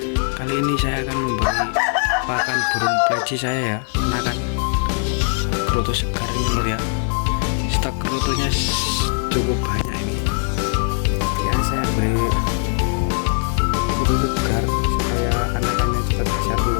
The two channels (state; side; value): silent; right; 57 dB below the other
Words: Kali ini saya akan memberi pakan burung pleci saya ya, anakan kroto segar ini lur ya. Stok krotonya cukup banyak ini. Ya saya beri kroto segar supaya anakannya cepat besar dulu